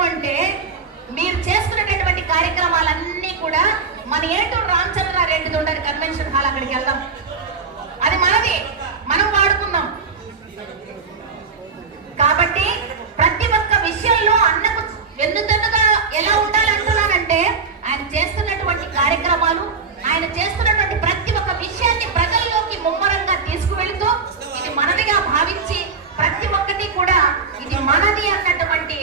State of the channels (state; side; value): quieter; left; 4.9 dB